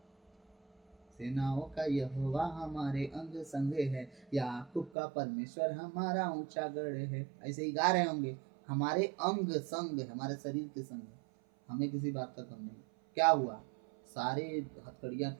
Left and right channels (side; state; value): left; drops out; at 4.9 s